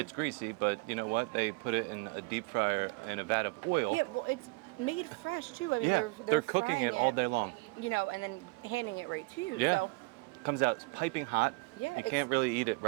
greasy, but you know what? They put it in a deep fryer in a vat of oil. Yeah, well, it's made fresh too. I mean, they're cooking frying it all day long. And then handing it right to you. Yeah. So Comes out piping hot. Yeah, You can't really eat it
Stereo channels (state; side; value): quieter; left; 26.8 dB